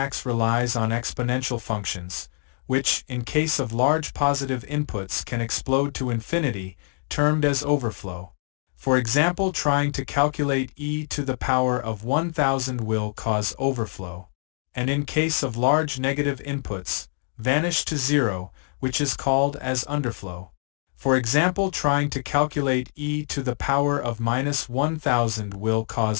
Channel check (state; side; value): silent; right; 62 dB below the other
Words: relies on exponential functions, which, in case of large positive inputs, can explode to infinity, termed as overflow. For example, trying to calculate e to the power of 1000 will cause overflow, and in case of large negative inputs, vanish to zero, which is called as underflow. For example, trying to calculate e to the power of minus 1000 will